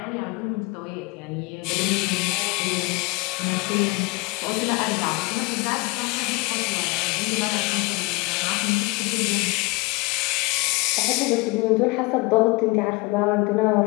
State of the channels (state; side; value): quieter; right; 25.0 dB